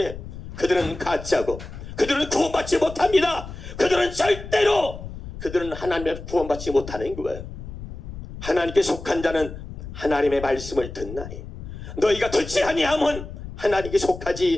그들은 가짜고, 그들은 구원받지 못합니다. 그들은 하나님의 구원받지 못하는 거예요. 하나님께 속한 자는 하나님의 말씀을 듣나니 너희가 듣지 아니하면 하나님께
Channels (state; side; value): noise; left; rumble, 11 dB below the sound